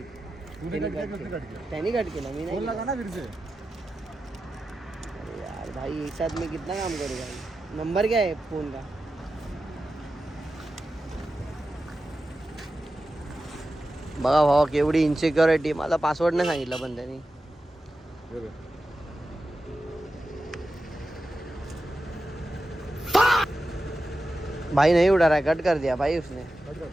त्यांनी कट केला, मी नाही केला. अरे यार भाई एक साथ मैं कितना काम करूँ भाई. नंबर क्या है फोन का? बघा भावा केवढी इन्सिक्युरिटी. मला पासवर्ड नाही सांगितलं पण त्यांनी. भाई नहीं उड़ा रहा है, कट कर दिया भाई उसने.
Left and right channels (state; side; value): normal; both; correlation 0.92